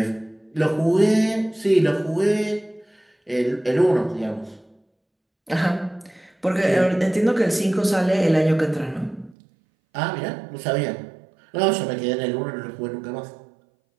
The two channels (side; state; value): left; drops out; at 9.3 s